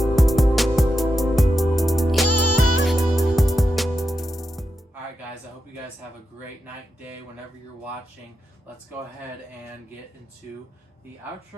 Guys, I hope you guys have a great night, day, whenever you're watching. Let's go ahead and get into the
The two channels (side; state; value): both; normal; correlation 0.87